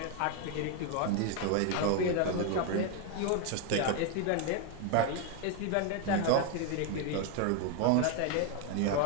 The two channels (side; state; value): both; different; correlation 0.01